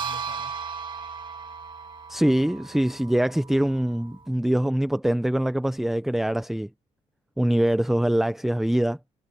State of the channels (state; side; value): normal; both; correlation 0.97